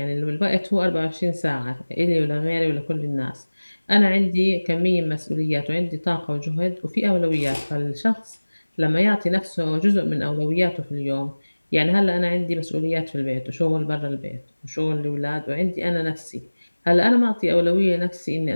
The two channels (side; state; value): both; inverted; correlation -1.00